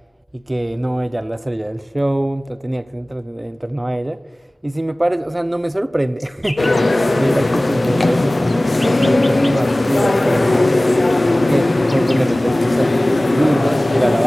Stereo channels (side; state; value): both; normal; correlation 0.98